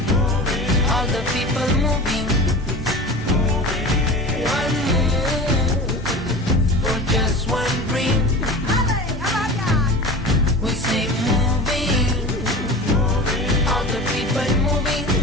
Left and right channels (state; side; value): normal; both; correlation 0.34